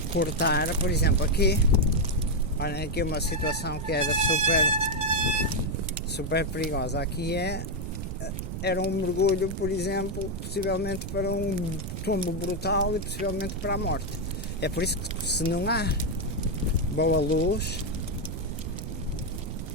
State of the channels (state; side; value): noise; right; rumble, 6 dB below the sound